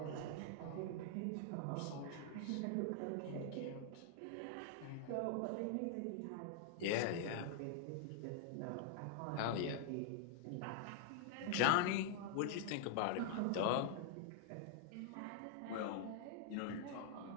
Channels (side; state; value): both; different; correlation -0.01